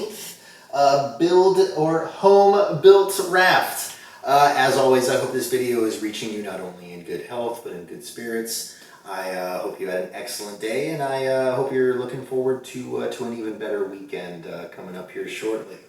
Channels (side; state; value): both; identical; correlation 1.00